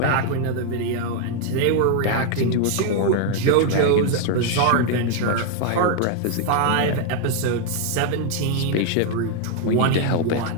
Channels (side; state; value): both; different; correlation 0.00